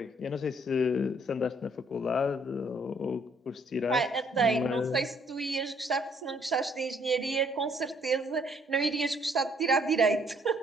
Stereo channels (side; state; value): both; normal; correlation 0.65